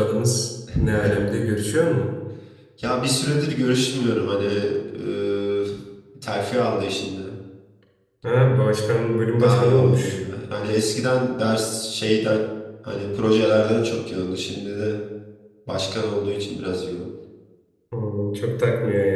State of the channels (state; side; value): identical; both; correlation 1.00